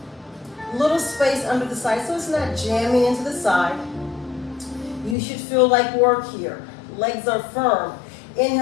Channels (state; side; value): drops out; right; at 5.2 s